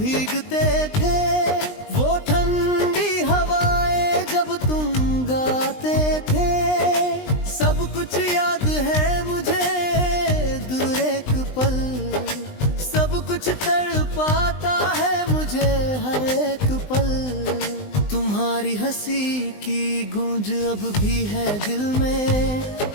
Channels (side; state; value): right; late; 20 ms